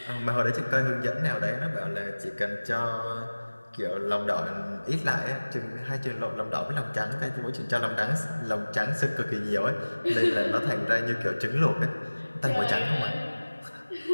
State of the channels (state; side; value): inverted; both; correlation -1.00